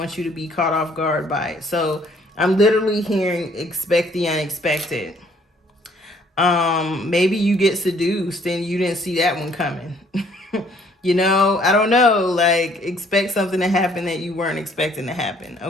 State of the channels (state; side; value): normal; both; correlation 0.62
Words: you to be caught off guard by it. So I'm literally hearing expect the unexpected. Maybe you get seduced and you didn't see that one coming. I don't know, like, expect something to happen that you weren't expecting to happen,